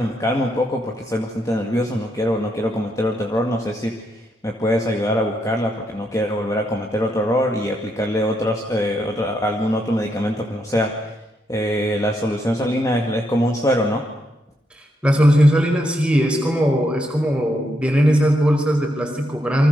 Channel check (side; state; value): both; normal; correlation 0.79